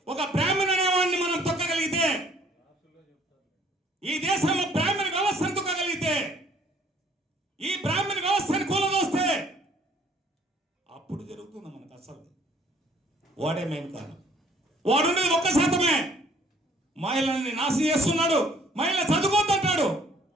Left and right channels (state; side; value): normal; both; correlation 0.59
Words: ఒక బ్రాహ్మణ అనేవాడిని మనం తొక్కగలిగితే, ఈ దేశంలో బ్రాహ్మణ వ్యవస్థను తొక్కగలిగితే, ఈ బ్రాహ్మణ వ్యవస్థను కూలదోస్తే అప్పుడు జరుగుతుంది మనకు అసలు. వాడే మెయిన్ కారణం. వాడున్నది 1%. మహిళల్ని నాశనం చేస్తున్నాడు. మహిళ చదువుకోద్దంటాడు.